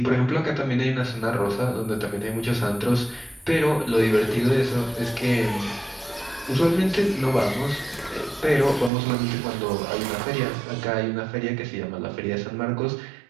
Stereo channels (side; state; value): left; drops out; at 8.9 s